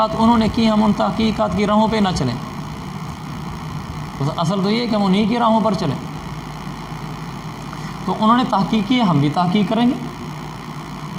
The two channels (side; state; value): both; identical; correlation 1.00